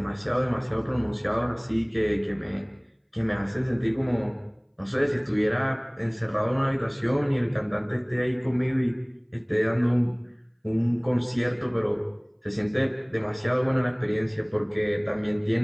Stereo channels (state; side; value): identical; both; correlation 1.00